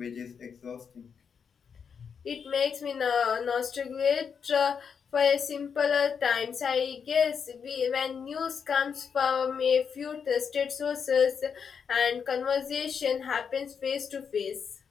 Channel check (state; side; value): quieter; right; 6.6 dB